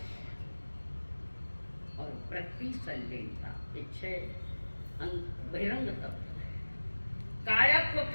और प्रतिसंलेनता, ये 6 बहिरंग तप। काया को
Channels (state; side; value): inverted; both; correlation -1.00